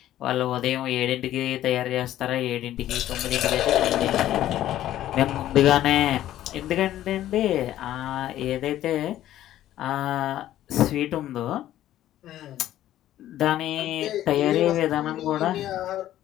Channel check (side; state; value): right; quieter; 13.0 dB